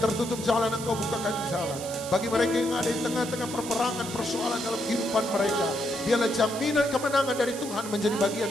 tertutup jalan, engkau bukakan jalan. Bagi mereka yang ada di tengah-tengah perperangan, persoalan dalam kehidupan mereka, biarlah jaminan kemenangan dari Tuhan menjadi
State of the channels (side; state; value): right; noise; hiss, 11 dB below the sound